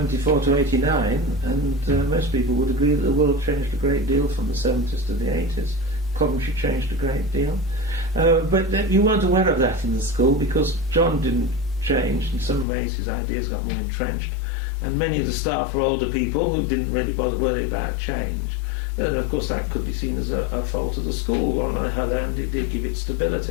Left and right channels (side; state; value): right; drops out; at 12.7 s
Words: to 89, and most people would agree that the world changed a great deal from the 70s to the 80s. Coventry changed a great deal. But you weren't aware of that in the school because John didn't change. In some ways his ideas got more entrenched, and many of the staff were older people who didn't really bother worry about change. And of course that could be seen as a fault of the school. On the other hand, it did give it